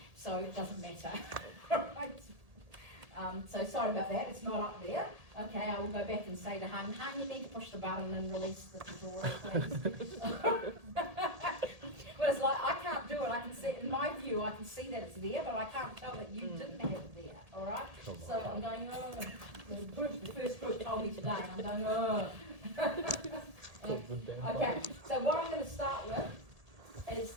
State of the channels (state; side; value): late; left; 1.8 ms